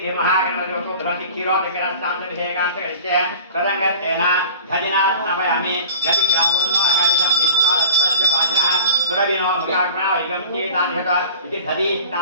धृति क्षीरोदकरस्तान्तर्भिषेकान्तरिष्ये तदङ्गत्तेन धजिनास्तवयामि गतिग्रावन्नो अकारिशं विश्वादस्तस्य वाजिनः सुरविनो मृगाग्राविगं चेतान्यत इति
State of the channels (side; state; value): both; inverted; correlation -0.41